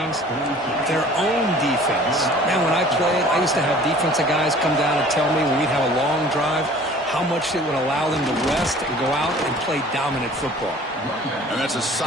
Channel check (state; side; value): normal; both; correlation 0.49